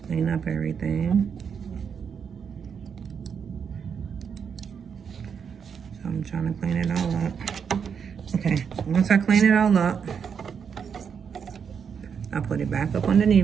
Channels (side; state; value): left; quieter; 6.9 dB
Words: Clean up everything. So I'm trying to clean it all up. Okay, once I clean it all up, I'll put it back up